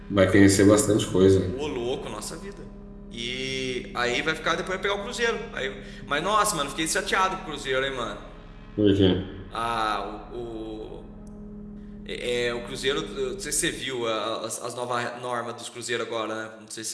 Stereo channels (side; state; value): both; identical; correlation 1.00